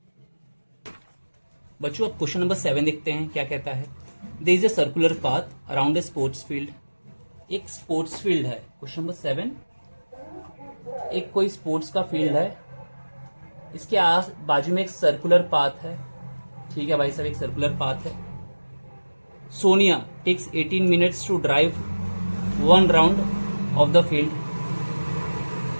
बच्चों अब क्वेश्चन नंबर 7 देखते हैं क्या कहता है। There is a circular path around a sports field. एक sports field है, question number 7। एक कोई स्पोर्ट्स का फील्ड है, इसके आस बाजू में एक सर्कुलर पाथ है। ठीक है भाई साहब, एक सर्कुलर पाथ है। Sonia takes 18 minutes to drive one round of the field.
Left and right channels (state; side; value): inverted; both; correlation -1.00